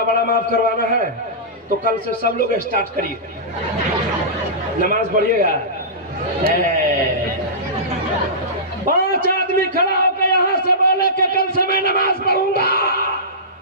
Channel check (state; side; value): normal; both; correlation -0.18